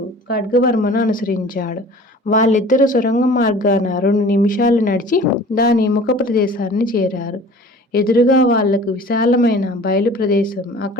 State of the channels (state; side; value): normal; both; correlation 0.44